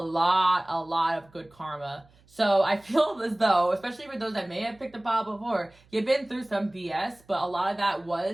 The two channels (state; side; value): noise; right; hum, 30 dB below the sound